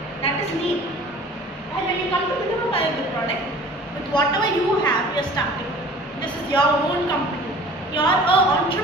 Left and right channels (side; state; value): both; normal; correlation 0.46